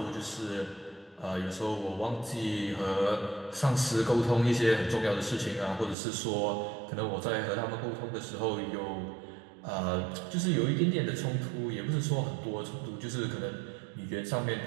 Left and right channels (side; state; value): left; drops out; at 6.0 s